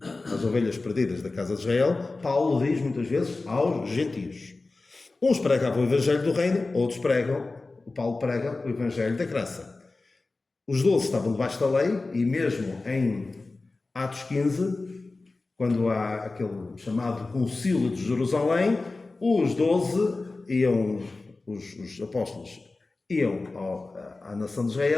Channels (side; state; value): right; quieter; 3.4 dB